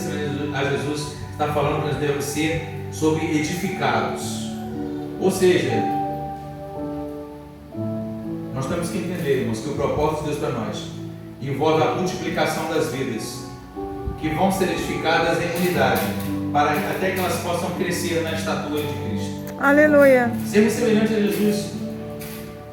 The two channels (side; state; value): both; identical; correlation 1.00